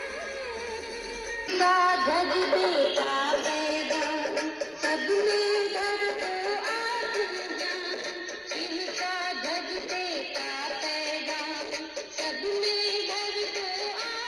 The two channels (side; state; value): both; identical; correlation 1.00